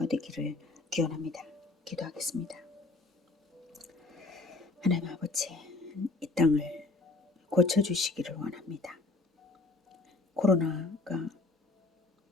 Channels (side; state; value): right; quieter; 3.4 dB